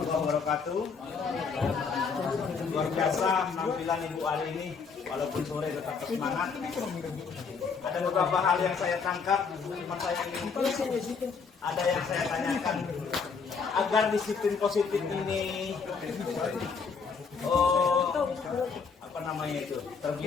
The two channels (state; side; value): quieter; right; 5.4 dB